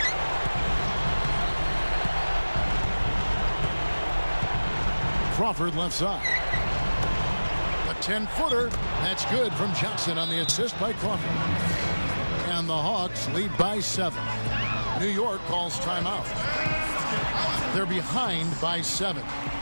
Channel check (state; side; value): inverted; both; correlation -1.00